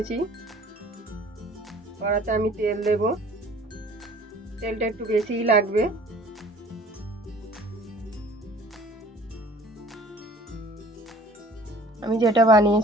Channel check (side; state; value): both; normal; correlation 0.51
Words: কড়াতে আমি তেল দেব। তেলটা একটু বেশিই লাগবে। আমি যেটা